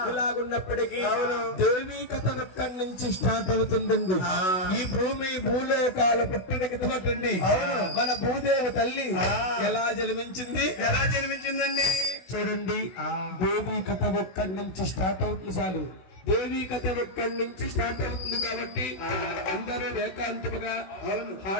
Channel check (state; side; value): late; right; 16 ms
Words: ఇలాగున్నప్పటికీ దేవి కథ ఇక్కడి నుంచి స్టార్ట్ అవుతుందండి. ఈ భూమి భూలోకాల పుట్టినకి తోటండి. మన భూదేవి తల్లి ఎలా జన్మించిందండి చూడండి. దేవి కథ ఒక్కడి నుంచి స్టార్ట్ అవుతుంది. చాలు దేవి కథ ఒక్కడి నుంచి స్టార్ట్ అవుతుంది కాబట్టి అందరూ ఏకాంతముగా